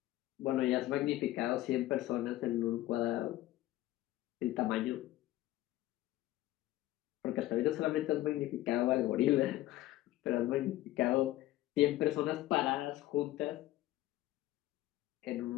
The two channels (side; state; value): right; quieter; 15.7 dB